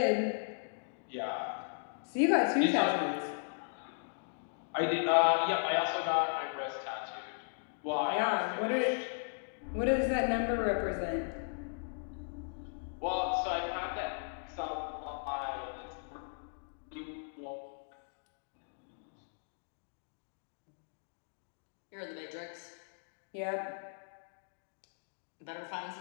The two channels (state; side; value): silent; right; digital silence